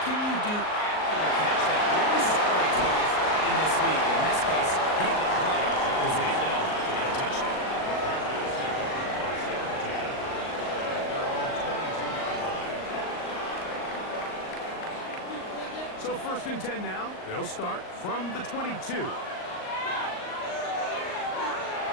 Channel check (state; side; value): late; right; 38 ms